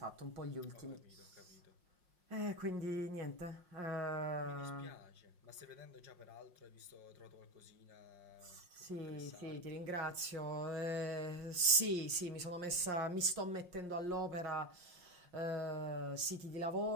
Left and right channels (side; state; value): left; late; 5.6 ms